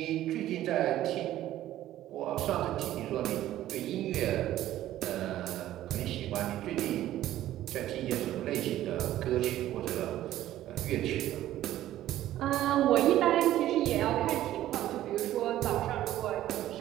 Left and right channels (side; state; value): left; quieter; 13.5 dB